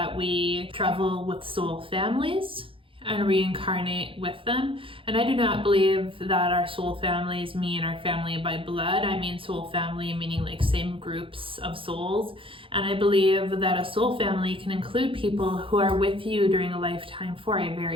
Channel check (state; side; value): late; left; 0.26 ms